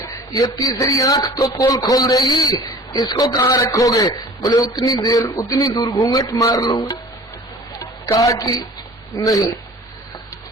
ये तीसरी आंख तो पोल खोल देगी, इसको कहाँ रखोगे? बोले उतनी दूर घूंघट मार लूंगा। कहा कि नहीं,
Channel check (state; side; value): normal; both; correlation 0.44